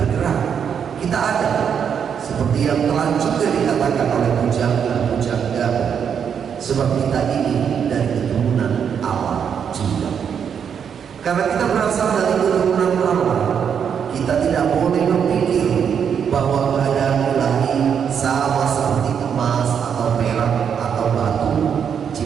kita ada, seperti yang telah juga dikatakan oleh pujangga-pujangga, sebab kita ini dari keturunan Allah juga. Karena kita berasal dari keturunan Allah, kita tidak boleh berpikir bahwa keadaan ilahi sama seperti emas atau perak atau batu,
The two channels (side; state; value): left; quieter; 7.6 dB